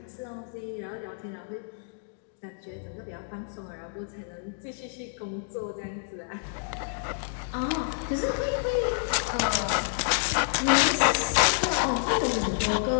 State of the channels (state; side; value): silent; right; digital silence